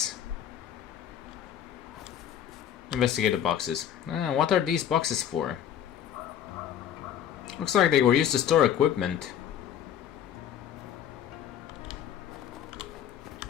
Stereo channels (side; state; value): right; quieter; 9.8 dB